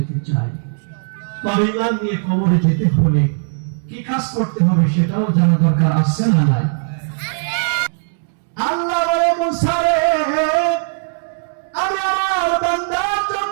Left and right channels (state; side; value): silent; left; digital silence